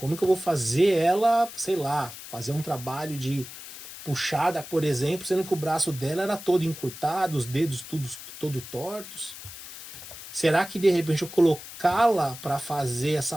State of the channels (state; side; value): noise; left; hiss, 13 dB below the sound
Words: que eu vou fazer ela, sei lá, fazer um trabalho de puxada, por exemplo, sendo que o braço dela era todo encurtado, os dedos todo tortos? Será que de repente eu colocá-la para fazer essa